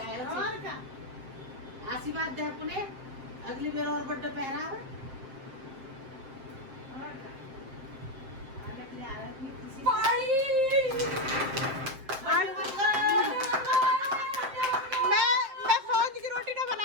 आशीर्वाद दे अपने, अगली बार और बर्थडे पहरा है। मैं सौंज की रोटी ना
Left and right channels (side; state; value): left; late; 7.4 ms